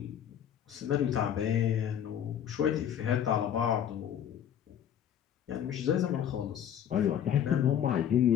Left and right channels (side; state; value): right; quieter; 9.5 dB